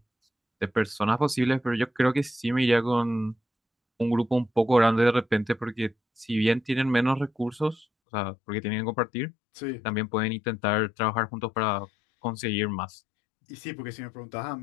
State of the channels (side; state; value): right; drops out; at 7.9 s